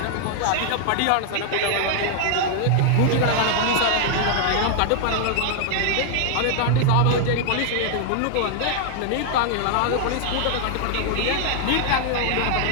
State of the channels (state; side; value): different; both; correlation 0.00